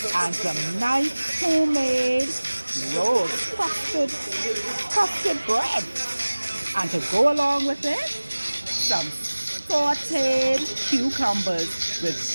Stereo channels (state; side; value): inverted; both; correlation -1.00